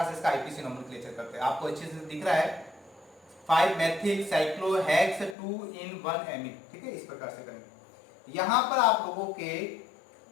से इसका आईपीसी नोमेनक्लेचर करते हैं। आपको अच्छे से दिख रहा है 5 मेथिल साइक्लोहेक्स 2 in 1 एमीन। ठीक है, इस प्रकार से करेंगे। यहां पर आप लोगों के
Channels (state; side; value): drops out; right; at 5.4 s